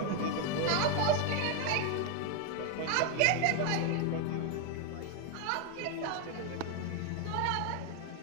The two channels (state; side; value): different; both; correlation 0.01